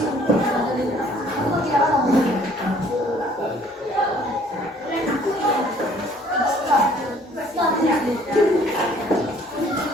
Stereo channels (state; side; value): normal; both; correlation 0.58